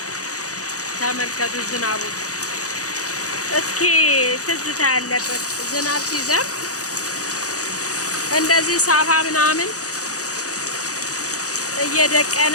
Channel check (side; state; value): right; late; 0.66 ms